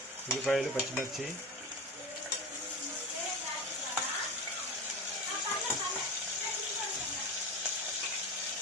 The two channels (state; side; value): normal; both; correlation 0.25